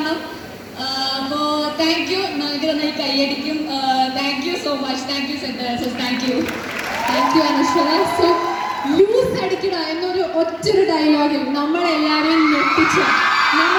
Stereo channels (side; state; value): both; identical; correlation 1.00